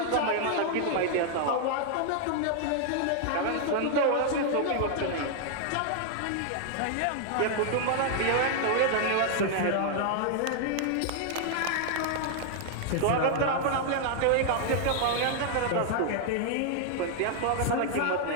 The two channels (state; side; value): different; both; correlation 0.00